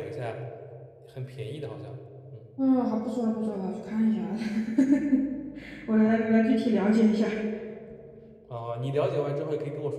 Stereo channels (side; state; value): both; identical; correlation 1.00